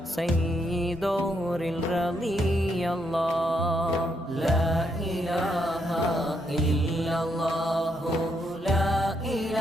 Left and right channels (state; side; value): normal; both; correlation 0.77